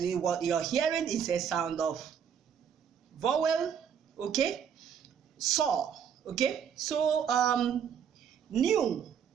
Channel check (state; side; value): quieter; left; 7.8 dB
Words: what you're hearing is a sound of vowel. Okay, saw. Okay, so new.